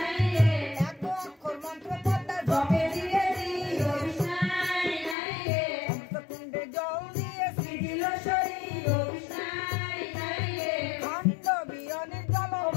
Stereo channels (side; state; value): right; drops out; at 5.2 s